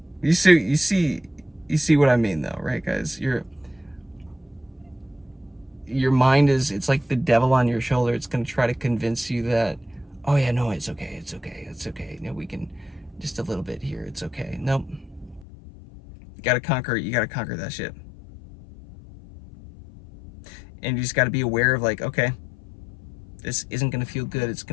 You see what I mean though, right, guys? Your mind it's like the devil on your shoulder. It's going to try to convince you that, oh yeah, no, it's okay. You know, we can just a little bit here. It's okay. Nope. You got to conquer that shit. And you just got to be aware of, like, okay, this isn't going to feel good. It's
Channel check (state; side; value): drops out; right; at 15.5 s